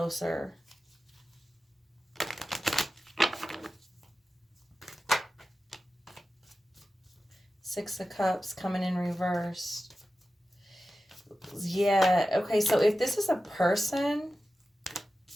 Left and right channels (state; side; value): normal; both; correlation 0.93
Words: Six of Cups coming in reverse. Yeah, okay, so if this is a person